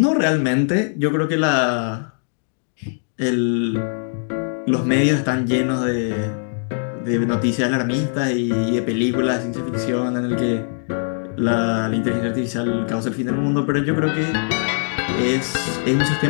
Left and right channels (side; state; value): right; silent; digital silence